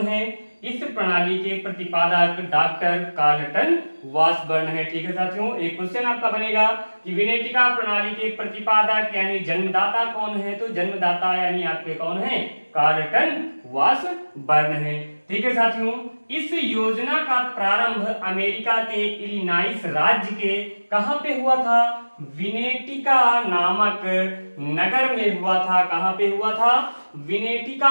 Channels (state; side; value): inverted; both; correlation -1.00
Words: है? इस प्रणाली के प्रतिपादक डॉक्टर कार्लटन वासबर्न है। ठीक है साथियों, एक क्वेश्चन आपका बनेगा कि विनेटिका प्रणाली के प्रतिपादक यानी जन्मदाता कौन है? तो जन्मदाता यानी आपके कौन है? कार्लटन वासबर्न है। ठीक है साथियों, इस योजना का प्रारंभ अमेरिका के इलिनॉइस राज्य के कहां पे हुआ था? विनेटिका नामक नगर में हुआ था। कहां पे हुआ था? विनेटिका